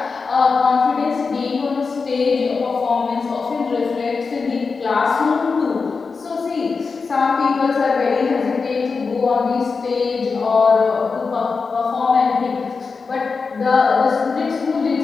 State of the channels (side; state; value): right; quieter; 4.8 dB